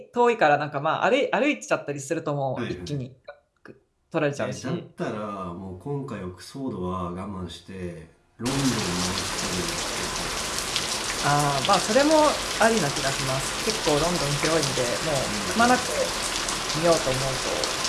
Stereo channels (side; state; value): both; identical; correlation 1.00